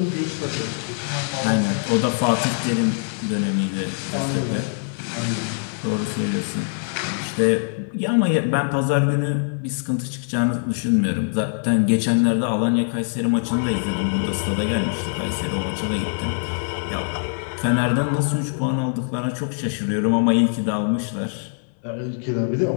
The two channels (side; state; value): right; silent; 63 dB below the other